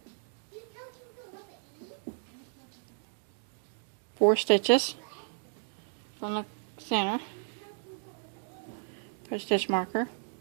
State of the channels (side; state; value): left; silent; digital silence